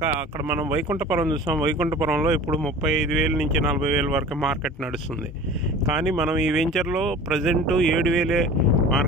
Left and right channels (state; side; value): normal; both; correlation 0.40